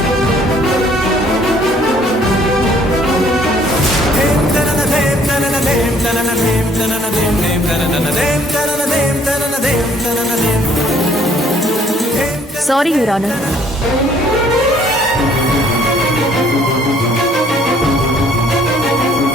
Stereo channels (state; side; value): normal; both; correlation 0.60